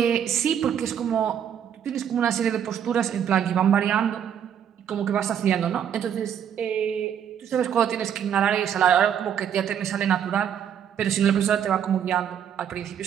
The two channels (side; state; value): left; quieter; 8.9 dB